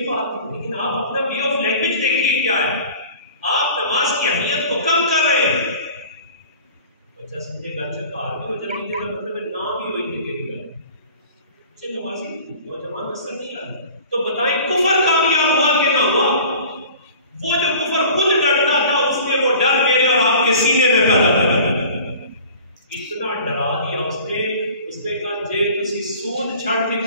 बात नहीं, लेकिन आप अपना वे ऑफ लैंग्वेज देखिए क्या है। आप नमाज की अहमियत को कम कर रहे हैं। बच्चा समझेगा अच्छा कार भी हो जाती है, मतलब नाम भी वही देखेगी घर नमाजी नौजवान नस्ल नहीं आ रही। तो बताएं कुफर कामयाब हुआ कि ना हुआ? वो जो कुफर खुद डरता था, उसने वो डर मेरे और आपके सीने में पैदा कर इतना डरा दिया उसने कहा जे तुसी सूद छड़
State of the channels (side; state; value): both; inverted; correlation -0.43